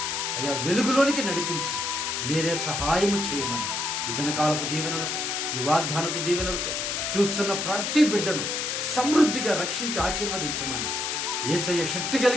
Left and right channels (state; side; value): noise; left; hiss, 1 dB below the sound